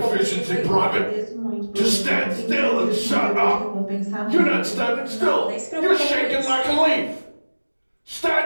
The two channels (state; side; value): inverted; both; correlation -1.00